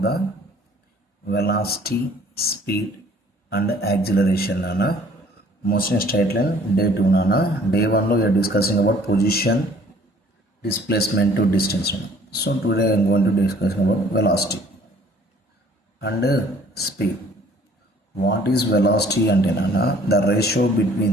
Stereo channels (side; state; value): both; normal; correlation 0.56